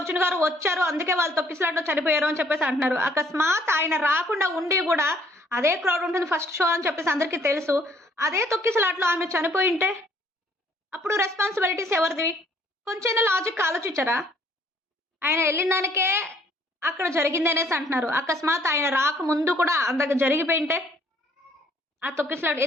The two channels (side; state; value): both; normal; correlation 0.63